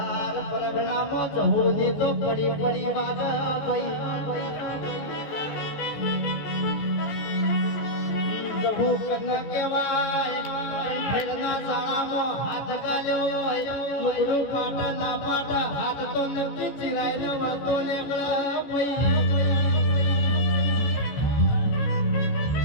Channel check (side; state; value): right; late; 14 ms